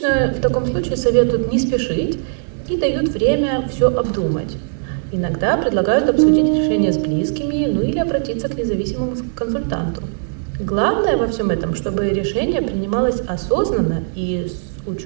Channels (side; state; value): left; silent; 67 dB below the other